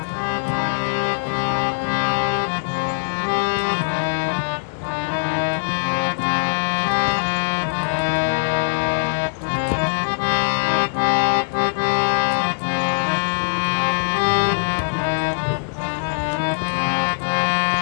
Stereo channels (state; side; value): silent; right; 65 dB below the other